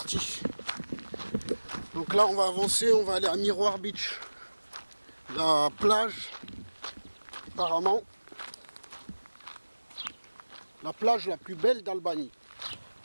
Donc là on va avancer, on va aller à Miroir Beach. La plage, apparemment, la plage la plus belle d'Albanie.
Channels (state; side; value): inverted; both; correlation -1.00